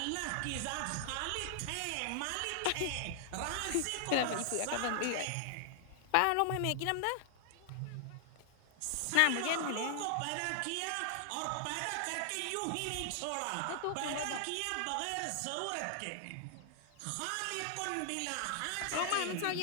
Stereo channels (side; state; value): both; different; correlation 0.00